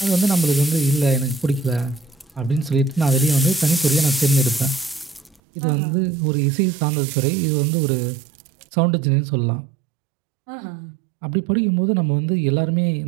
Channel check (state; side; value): drops out; left; at 5.4 s